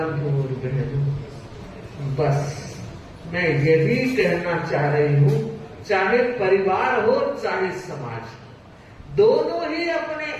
और बहनों, बस मैं यही कहना चाह रही हूँ, चाहे परिवार हो चाहे समाज, दोनों ही अपने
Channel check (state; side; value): identical; both; correlation 1.00